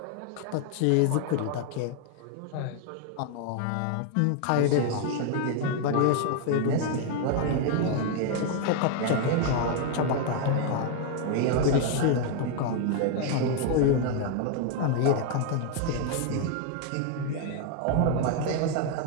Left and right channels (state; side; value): different; both; correlation 0.00